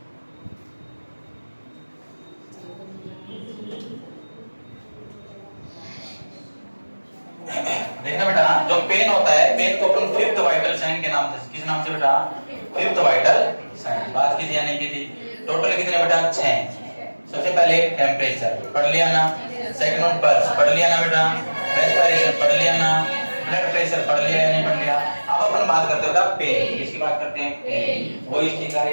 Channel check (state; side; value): inverted; both; correlation -1.00